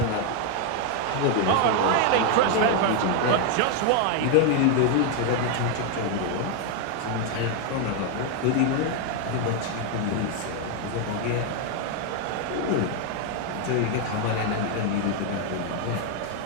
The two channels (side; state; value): both; different; correlation 0.01